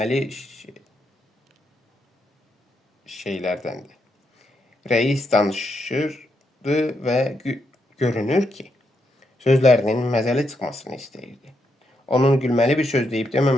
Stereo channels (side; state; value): both; normal; correlation 0.80